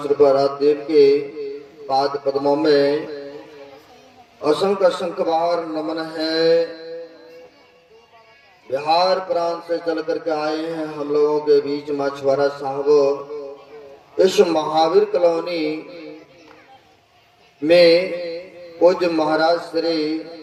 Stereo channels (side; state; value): both; identical; correlation 1.00